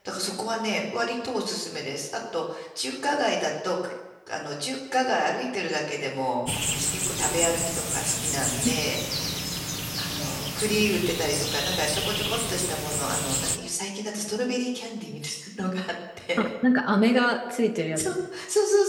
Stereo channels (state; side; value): identical; both; correlation 1.00